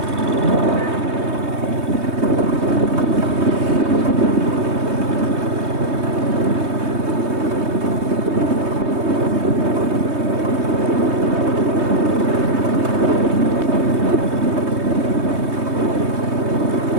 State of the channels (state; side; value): late; left; 3.2 ms